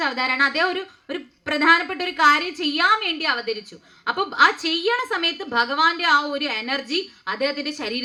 അവതാരമാണ്. അദ്ദേഹം ഒരു പ്രധാനപ്പെട്ട ഒരു കാര്യം ചെയ്യാൻ വേണ്ടി അവതരിച്ചു. അപ്പൊ ആ ചെയ്യണ സമയത്ത് ഭഗവാന്റെ ആ ഒരു എനർജി അദ്ദേഹത്തിന്റെ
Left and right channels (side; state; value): both; identical; correlation 1.00